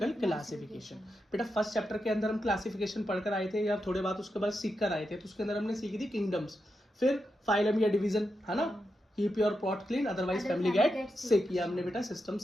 क्लासिफिकेशन। बेटा फर्स्ट चैप्टर के अंदर हम क्लासिफिकेशन पढ़कर आए थे या थोड़े बात उसके बाद सीख कर आए थे, तो उसके अंदर हमने सीखी थी किंगडम्स, फिर फाइलम या डिवीजन, है ना, keep your pot clean otherwise family get sick. ये हमने बेटा सिस्टम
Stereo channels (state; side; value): normal; both; correlation 0.86